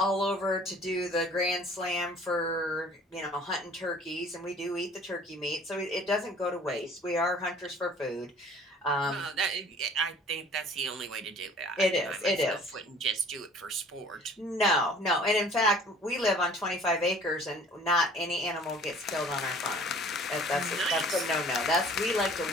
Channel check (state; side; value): normal; both; correlation 0.51